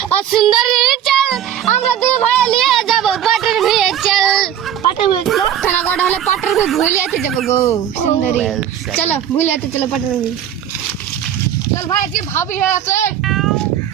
সুন্দরী চল আমরা দুই ভাই নিয়ে যাব পাটের ভিড়ে চল পাটের ভিড়ে চল খানা কটা হলে পাটের ভিড়ে ভুলিয়াতে যাব গো সুন্দরী চলো ভুলিয়াতে চলো পাটের ভিড়ে চল ভাই কি ভাবি আছে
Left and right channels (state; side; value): quieter; left; 10.1 dB